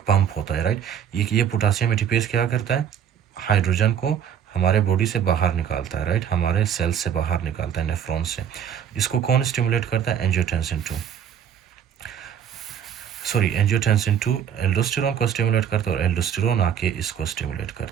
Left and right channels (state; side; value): quieter; left; 8.7 dB